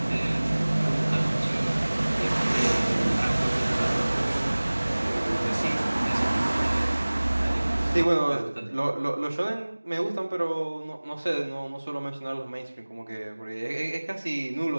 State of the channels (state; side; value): inverted; both; correlation -1.00